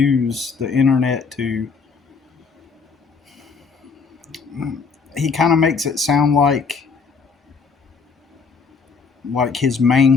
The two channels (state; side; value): quieter; right; 5.1 dB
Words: the internet to. He kind of makes it sound like his